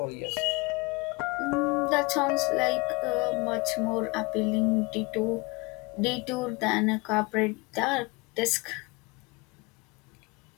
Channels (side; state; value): right; quieter; 26.8 dB